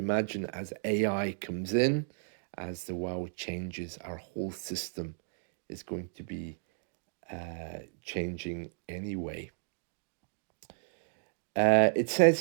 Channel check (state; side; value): silent; left; digital silence